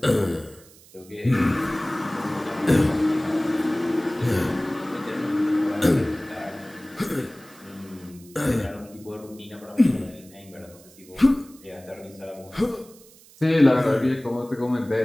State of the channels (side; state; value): right; noise; hiss, 24 dB below the sound